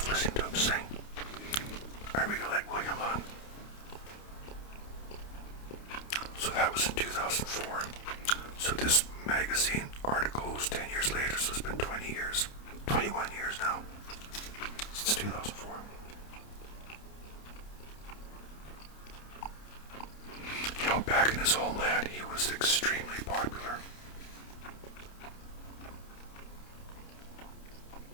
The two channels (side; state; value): right; late; 29 ms